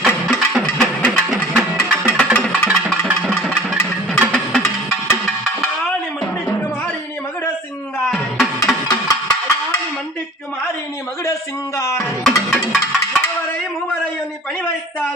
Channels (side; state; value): both; normal; correlation 0.46